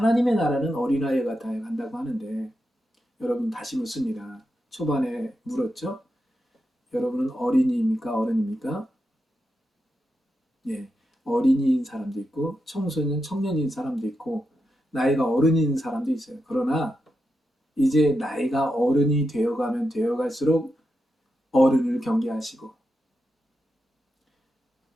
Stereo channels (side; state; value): both; normal; correlation 0.87